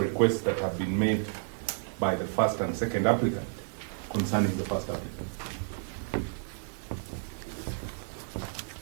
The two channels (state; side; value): silent; left; 57 dB below the other